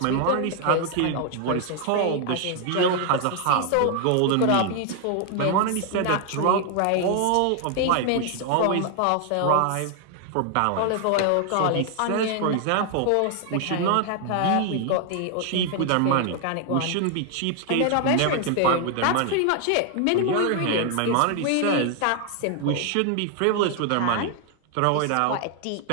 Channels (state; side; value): different; both; correlation 0.00